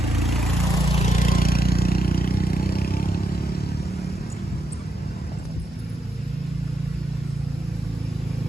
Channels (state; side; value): normal; both; correlation 0.82